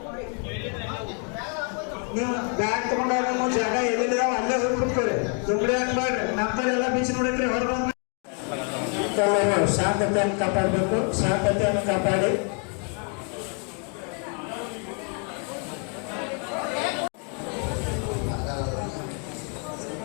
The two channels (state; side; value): quieter; right; 38.8 dB